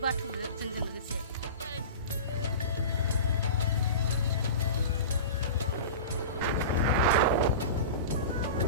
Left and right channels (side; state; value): both; inverted; correlation -0.31